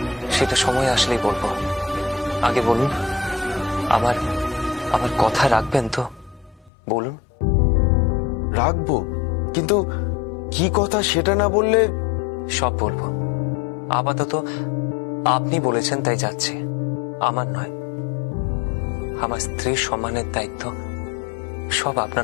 সেটা সময় আসলেই বলবো। আগে বলুন, আমার আমার কথা রাখবেন তো? বলুন। রাখবো, কিন্তু কি কথা সেটা না বললে? সব বলবো। আপাতত আপনি বলেছেন তাই যাচ্ছে, আমার নয়। আমার স্ত্রীর সম্মানের দায়িত্ব সব আপনার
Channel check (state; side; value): drops out; right; at 6.7 s